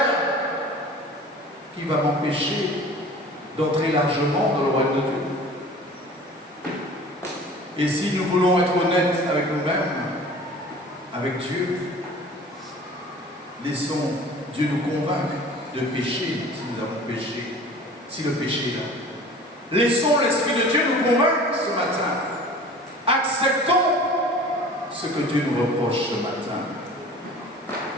qui va m'empêcher d'entrer largement dans le royaume de Dieu? Et si nous voulons être honnêtes avec nous-mêmes, avec Dieu, laissons Dieu nous convaincre de pécher si nous avons péché, si le péché est là. Laissons l'Esprit de Dieu nous convaincre ce matin. Acceptons ce que Dieu nous reproche ce matin.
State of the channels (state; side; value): normal; both; correlation 0.43